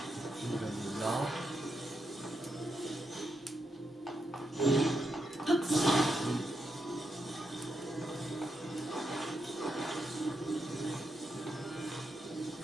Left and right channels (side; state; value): both; normal; correlation 0.83